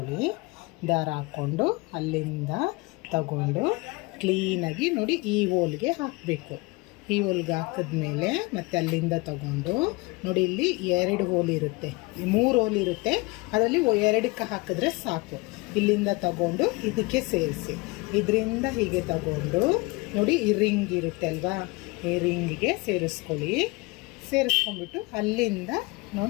ದಾರ ಹಾಕ್ಕೊಂಡು ಅಲ್ಲಿಂದ ತಗೊಂಡು ಕ್ಲೀನಾಗಿ ನೋಡಿ ಈ ಹೋಲ್ಗೆ ಹಾಕಬೇಕು. ಈ ಹೋಲ್ಗೆ ಹಾಕಿದ್ಮೇಲೆ ಮತ್ತೆ ಅಲ್ಲಿಂದ ತಗೊಂಡು ನೋಡಿ, ಇಲ್ಲಿ 2 ಹೋಲ್ ಇರುತ್ತೆ, 3 ಹೋಲ್ ಇರುತ್ತೆ, ಅದರಲ್ಲಿ 2ಕ್ಕೆ ಹಾಕಿದ್ರೆ ಸಾಕು. ಇಲ್ಲಿಂದ ತಗೊಂಡು ಇದಕ್ಕೆ ಸೇರಿಸಿ, ಇದರಿಂದ ಹೀಗೆ ತಗೊಂಡು ನೋಡಿ ಈ ರಿಂಗ್ ಇರುತ್ತೆ ಅಲ್ವಾ, ಈ ರಿಂಗಿಗೆ ಸೇರಿಸ್ಕೊಳ್ಳಿ. ಸೇರಿಸ್ಕೊಂಡ್ಬಿಟ್ಟು ಅಲ್ಲಿಂದ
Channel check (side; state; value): right; quieter; 24.9 dB